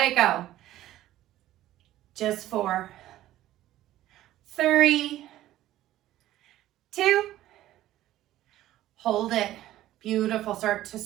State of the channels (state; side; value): quieter; left; 14.2 dB